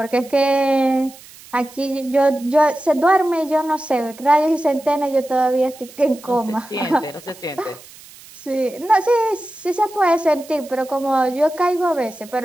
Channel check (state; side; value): noise; right; hiss, 21 dB below the sound